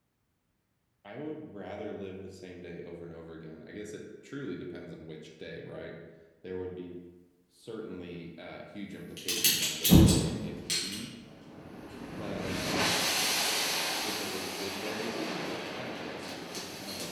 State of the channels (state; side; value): identical; both; correlation 1.00